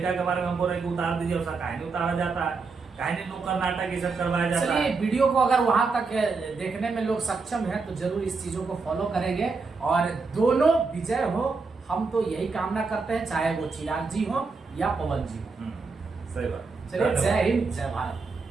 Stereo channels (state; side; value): quieter; left; 4.4 dB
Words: के बारे में हमको रहे कि उतार दीजिए, उसका काहे नहीं उतारा जाता है, काहे नहीं नुक्कड़ नाटक ये सब करवाया जाता है। चलिए, वीडियो को अगर वहां तक देखने में लोग सक्षम हैं तो जरूर इस चीजों को फॉलो करेंगे और दोनों विजय हो, हम तो यही कामना करते हैं, चाहे वो चिराग जी हो या पवन जी हो। सही बात। चलिए, जय हिंद, जय भारत।